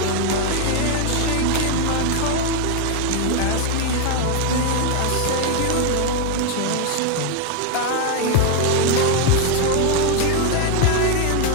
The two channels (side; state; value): both; different; correlation 0.01